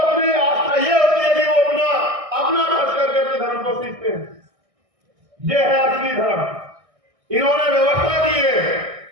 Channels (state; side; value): late; left; 1.6 ms